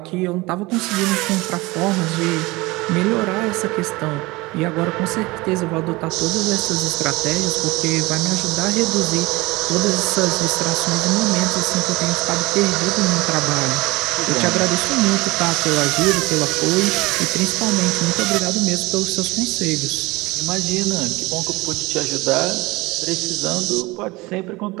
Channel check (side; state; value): left; quieter; 22.2 dB